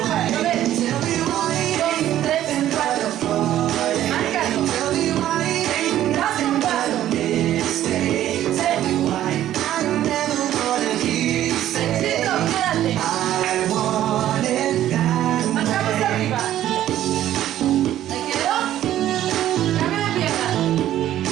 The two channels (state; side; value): quieter; left; 12.5 dB